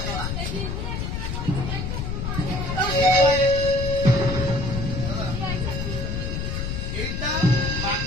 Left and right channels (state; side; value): noise; left; rumble, 3 dB below the sound